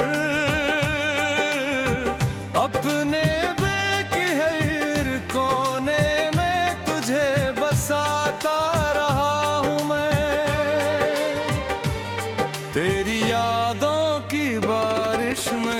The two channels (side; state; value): both; identical; correlation 1.00